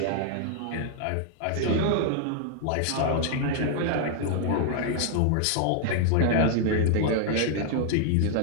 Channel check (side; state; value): both; different; correlation 0.00